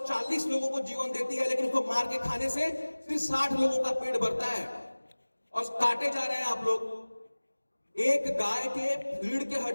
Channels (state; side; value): inverted; both; correlation -1.00